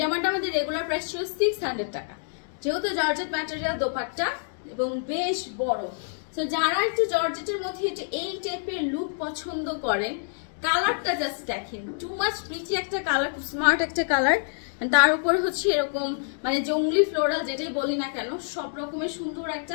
জামাটা আমাদের রেগুলার প্রাইস ছিল 600 টাকা, যেহেতু জর্জেট ম্যাটেরিয়াল দোপাট্টা এবং বেশ বড়। সো যারা একটু জর্জেটের মধ্যে একটু এই টাইপের লুক পছন্দ করেন, কালারটা জাস্ট দেখেন, টু মাচ প্রিটি একটা কালার, খুব স্মার্ট একটা কালার। তার উপর হচ্ছে এরকম মানে জঙ্গলি ফ্লোরাল যেটাই বলি না কেন, সব রকমের সুন্দর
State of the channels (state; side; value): silent; right; digital silence